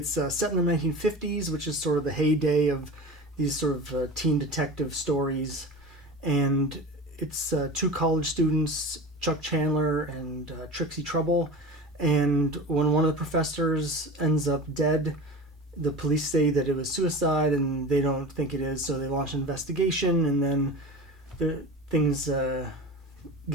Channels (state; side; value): normal; both; correlation 0.32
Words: set in the 1950s, which is sort of the heyday of these sort of teen detective stories. And it's two college students, Chuck Chandler and Trixie Trouble. And when one of the professors ends up dead, the police say that it was suicide, and they don't think it is, so they launch an investigation, and then things